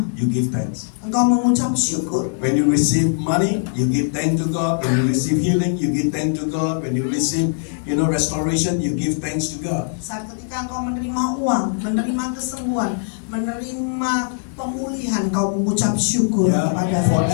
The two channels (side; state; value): right; silent; digital silence